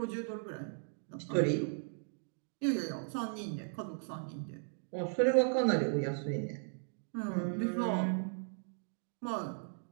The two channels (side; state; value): left; silent; digital silence